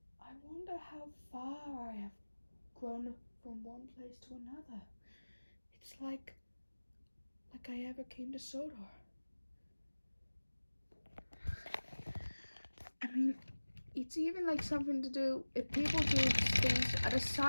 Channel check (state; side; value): inverted; both; correlation -1.00